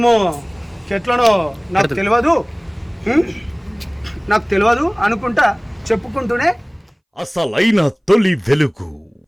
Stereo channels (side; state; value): both; identical; correlation 1.00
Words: చెట్లనో నాకు తెలియదు అనుకుంటా చెప్పుకుంటూనే అసలైన తొలి వెలుగు.